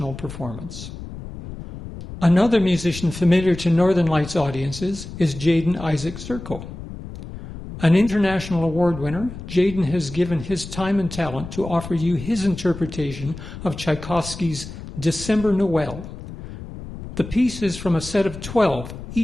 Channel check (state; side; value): noise; left; rumble, 12 dB below the sound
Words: performance. Another musician familiar to Northern Lights audiences is Jaden Isaac Zirko. An international award winner, Jaden has given his time and talent to offer you his interpretation of Tchaikovsky's December Noel. The piece is from a set of 12,